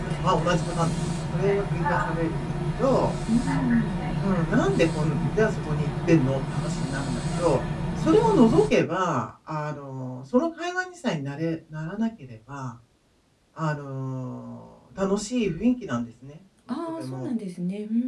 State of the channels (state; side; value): identical; both; correlation 1.00